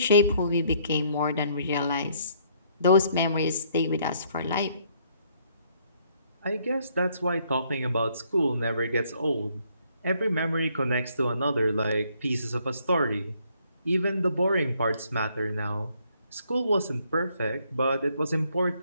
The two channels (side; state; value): both; inverted; correlation -0.67